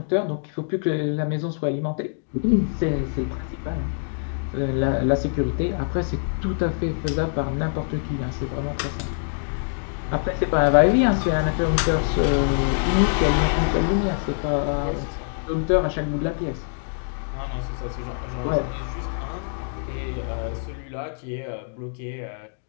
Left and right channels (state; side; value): silent; right; digital silence